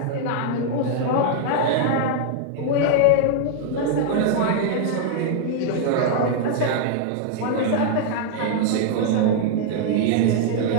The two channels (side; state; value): both; different; correlation -0.01